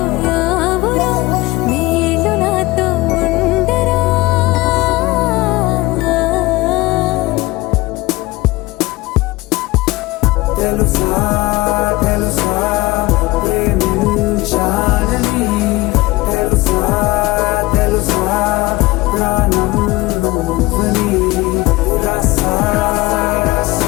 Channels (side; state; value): right; quieter; 20.6 dB